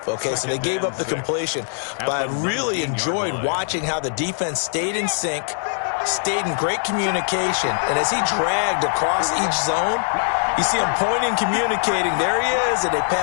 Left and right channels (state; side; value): silent; right; digital silence